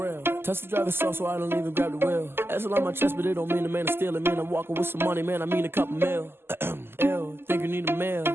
Touch the driver's soft, so I don't even grab the wheel. That's on my chest, but it don't mean the man is stealing. Man, I'm walking with some money, man, I mean a couple mil. Ew, think you need a meal.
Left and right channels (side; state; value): left; late; 0.11 ms